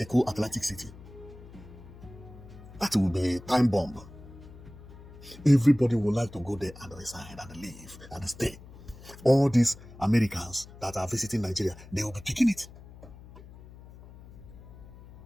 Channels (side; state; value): left; noise; hum, 18 dB below the sound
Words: Atlantic City. That will be a time bomb. Everybody would like to go there and reside and live and stay. All these Americans that are visiting Nigeria, they will be picking it.